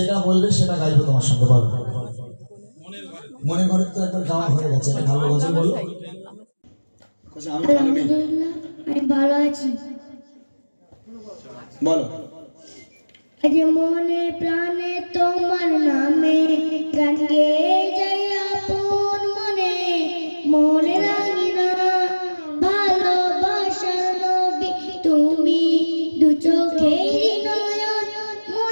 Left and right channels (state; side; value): inverted; both; correlation -1.00